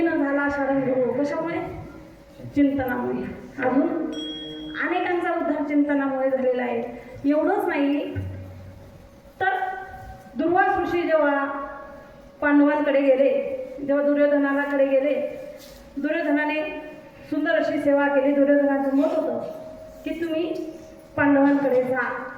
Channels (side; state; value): both; identical; correlation 1.00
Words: झाला शारंगधरू. कशामुळे? चिंतनामुळे. अजून अनेकांचा उद्धार चिंतनामुळे झालेला आहे. एवढंच नाही तर दुर्वास ऋषी जेव्हा पांडवांकडे गेले, जेव्हा दुर्योधनाकडे गेले, दुर्योधनाने सुंदर अशी सेवा केली. दुर्योधनाचं मत होतं की तुम्ही पांडवांकडे जा.